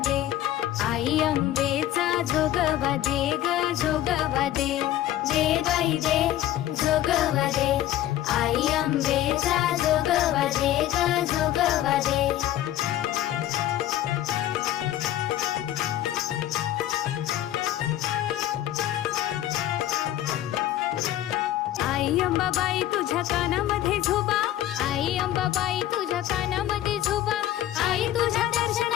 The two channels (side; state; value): right; quieter; 13.0 dB